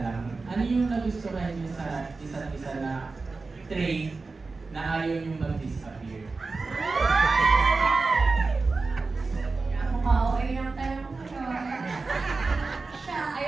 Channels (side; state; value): left; quieter; 3.9 dB